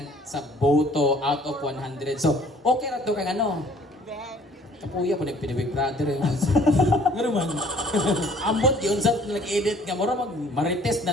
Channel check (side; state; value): both; normal; correlation 0.56